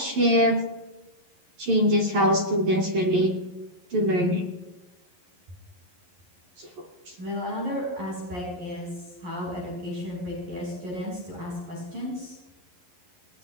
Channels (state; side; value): late; left; 11 ms